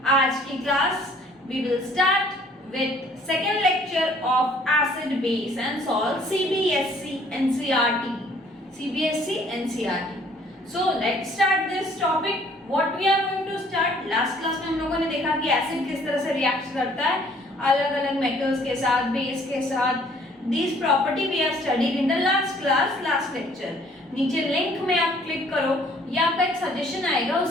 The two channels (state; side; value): normal; both; correlation 0.58